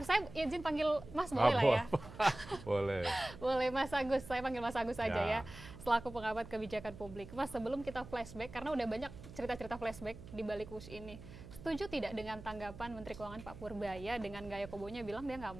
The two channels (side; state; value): right; noise; hum, 15 dB below the sound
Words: Saya izin panggil Mas boleh lah ya? Boleh. Boleh Mas Agus, saya panggil Mas Agus saja ya. Ya. Selaku pengamat kebijakan publik. Mas, sebelum kita flashback, karena udah banyak cerita-cerita flashback di balik Wush ini. Setuju tidak dengan tanggapan Menteri Keuangan Pak Purbaya dengan gaya kobonya bilang dia nggak